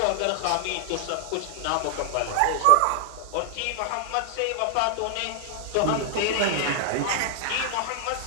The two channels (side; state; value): both; different; correlation 0.00